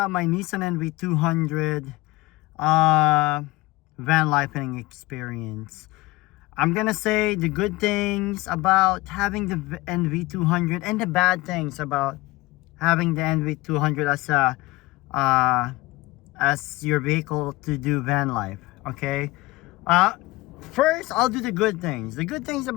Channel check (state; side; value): quieter; right; 20.5 dB